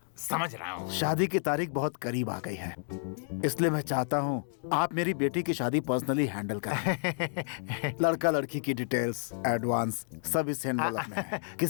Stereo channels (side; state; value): right; silent; digital silence